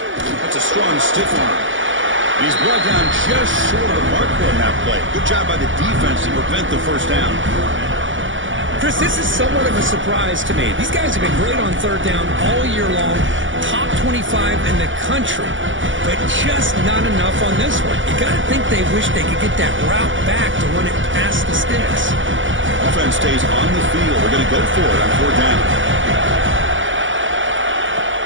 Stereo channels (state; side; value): late; left; 0.56 ms